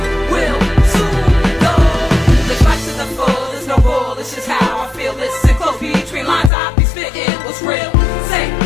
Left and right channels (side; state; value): right; drops out; at 6.5 s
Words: will soon go. Let's rise to the full, there's no rule, it's just how I feel. Listen close between lines, I be spitting what's real. Say